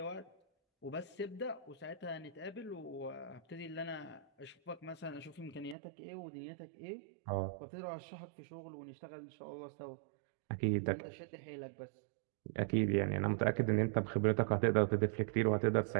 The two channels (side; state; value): left; drops out; at 5.8 s